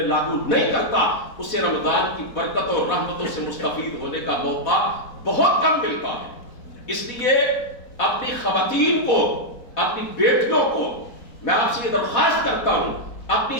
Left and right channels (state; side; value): late; right; 4.1 ms